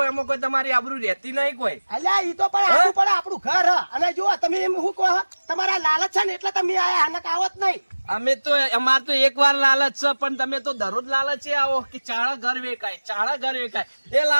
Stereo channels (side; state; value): both; inverted; correlation -1.00